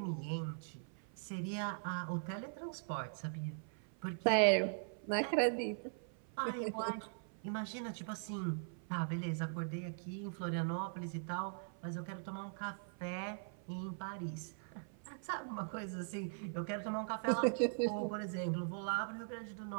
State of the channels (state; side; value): silent; left; 50 dB below the other